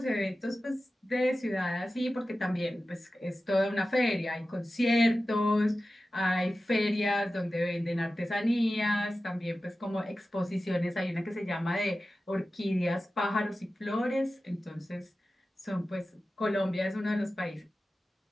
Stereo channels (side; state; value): both; normal; correlation 0.94